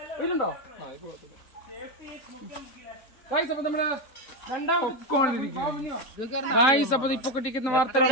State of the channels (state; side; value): late; right; 3.8 ms